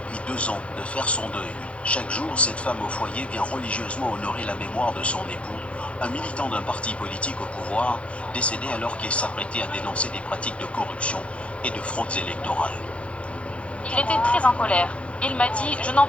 2 ans de faire son deuil. Chaque jour, cette femme au foyer vient religieusement honorer la mémoire de son époux, un militant d'un parti politique au pouvoir, décédé alors qu'il s'apprêtait à dénoncer des pratiques de corruption et de fraudes électorales. Il était très en colère. Il m'a dit: je n'en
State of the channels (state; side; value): late; right; 0.061 ms